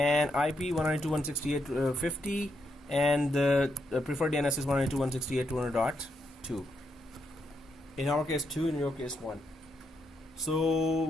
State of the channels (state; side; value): normal; both; correlation 0.80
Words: IP 192.168.50, and the preferred DNS is 192.168.200.2. In our case 2, in your case 1. So